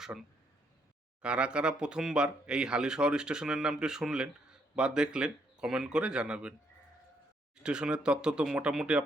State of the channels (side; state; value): both; normal; correlation 0.72